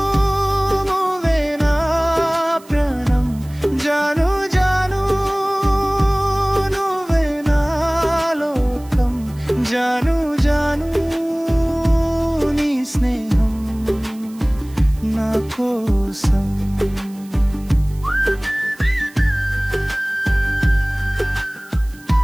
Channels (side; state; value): right; noise; hiss, 25 dB below the sound